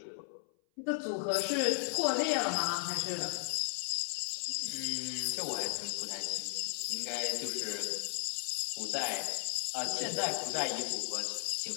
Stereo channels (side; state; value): right; silent; 54 dB below the other